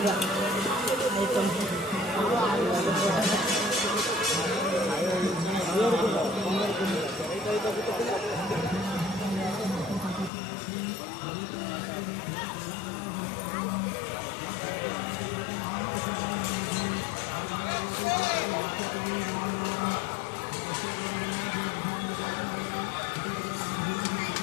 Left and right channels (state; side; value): drops out; right; at 10.3 s